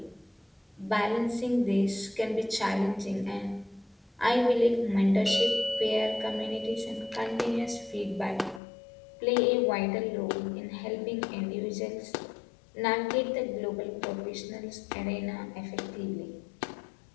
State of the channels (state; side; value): drops out; right; at 8.6 s